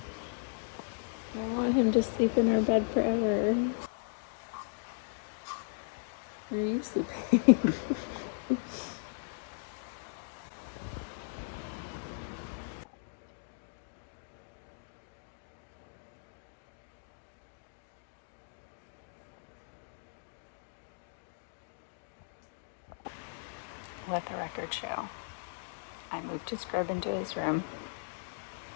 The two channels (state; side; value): silent; right; digital silence